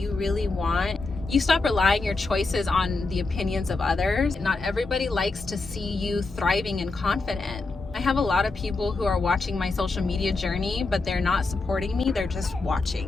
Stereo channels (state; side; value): quieter; right; 3.6 dB